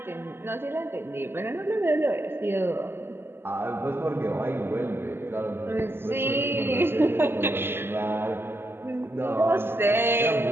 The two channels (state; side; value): late; left; 0.11 ms